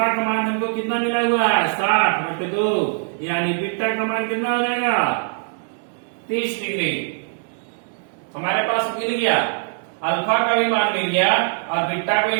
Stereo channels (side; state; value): left; silent; digital silence